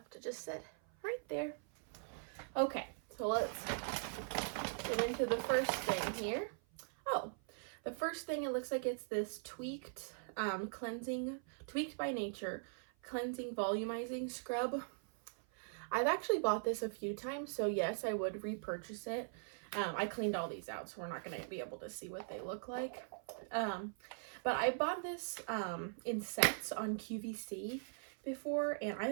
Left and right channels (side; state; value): left; silent; 50 dB below the other